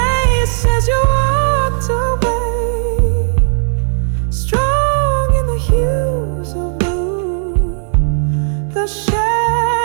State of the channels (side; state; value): left; silent; digital silence